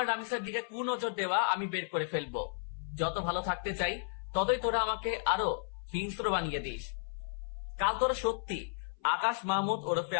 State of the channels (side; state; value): right; silent; 55 dB below the other